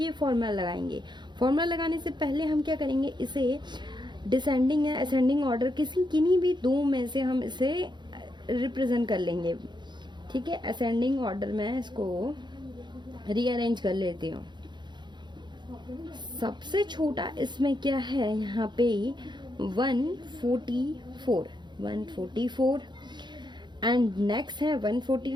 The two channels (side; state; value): left; late; 0.22 ms